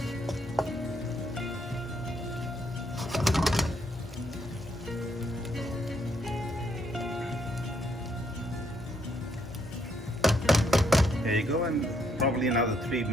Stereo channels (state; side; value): normal; both; correlation 0.72